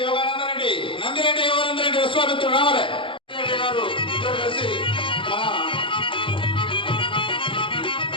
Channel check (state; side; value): late; right; 0.25 ms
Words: యోగానందరెడ్డి, నందిరెడ్డి యోగానందరెడ్డి విశ్వామిత్రుడు రావాలి. నందిరెడ్డి గారు ఇద్దరు కలిసి మన